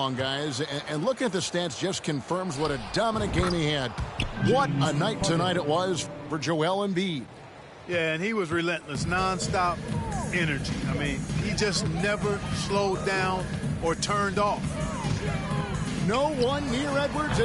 guys, and looking at the stats just confirms what a dominant game he had. What a night tonight it was for Joel Embiid. Yeah, and he was relentless, nonstop energy. I mean, he just never slowed down or turned off. No one near Edwards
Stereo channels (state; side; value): identical; both; correlation 1.00